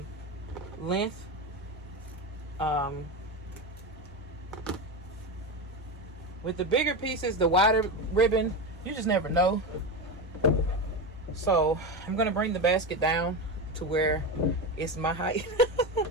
length. With the bigger pieces, the wider ribbon, you just never know. So I'm gonna bring the basket down to where it's my height.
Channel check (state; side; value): normal; both; correlation 0.18